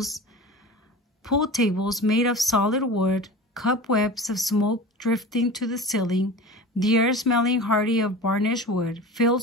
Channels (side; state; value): both; normal; correlation 0.34